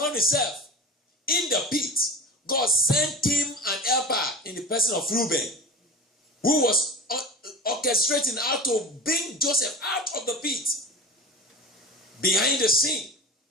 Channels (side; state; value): both; normal; correlation 0.32